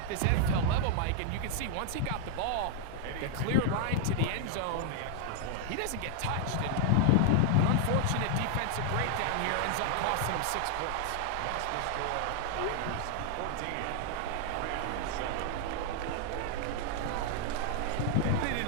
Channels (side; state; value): both; different; correlation 0.00